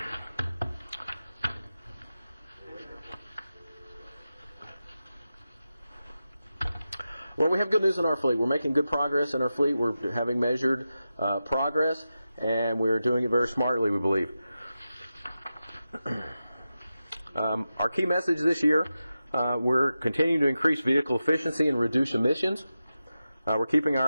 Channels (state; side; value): inverted; both; correlation -0.92